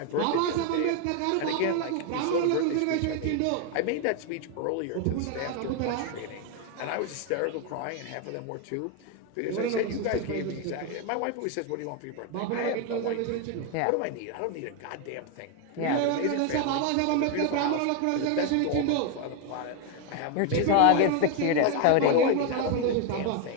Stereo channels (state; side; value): different; both; correlation 0.01